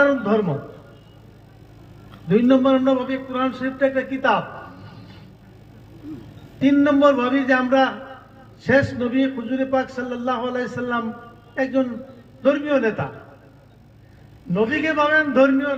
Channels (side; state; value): both; identical; correlation 1.00